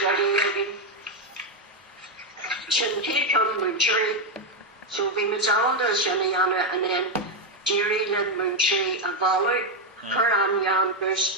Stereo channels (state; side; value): normal; both; correlation 0.05